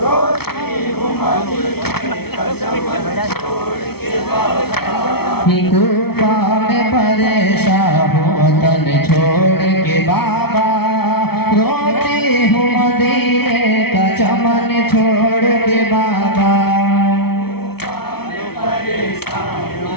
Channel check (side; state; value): right; late; 0.96 ms